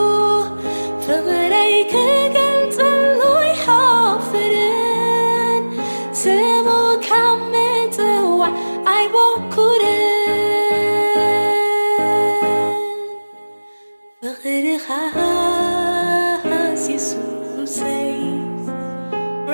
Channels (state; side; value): inverted; both; correlation -1.00